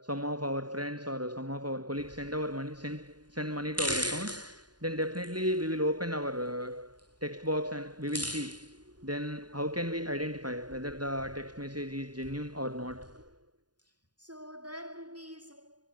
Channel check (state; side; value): late; left; 0.70 ms